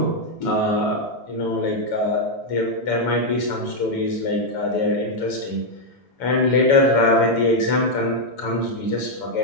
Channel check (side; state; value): right; late; 7.0 ms